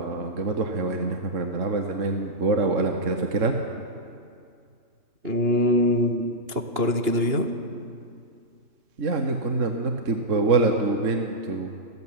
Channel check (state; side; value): late; left; 2.8 ms